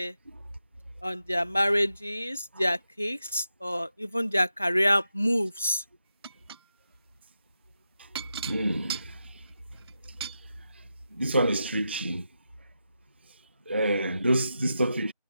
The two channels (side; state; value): both; inverted; correlation -0.88